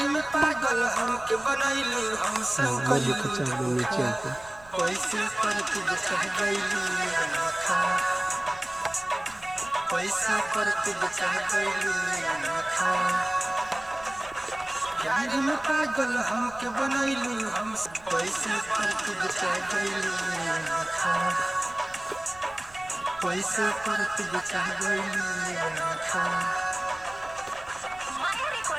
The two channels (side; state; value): right; noise; rumble, 23 dB below the sound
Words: में पागल हमके बनैलू, हम सब कइलू धोखा। पैसे पर तू बचा गइलू आँखा, पैसा पर तू बचा गइलू आँखा। प्यार में पागल हमके बनैलू, हम पैसे पर तू बचा गइलू आँखा, पैसे पर तू बचा गइलू आँखा। माया